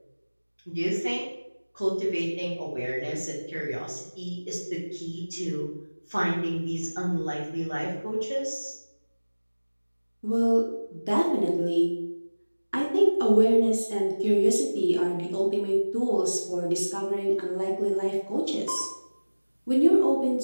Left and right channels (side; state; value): both; inverted; correlation -1.00